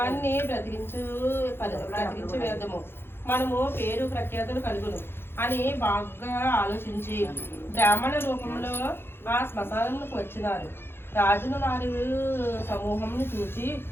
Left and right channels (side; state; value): right; late; 0.11 ms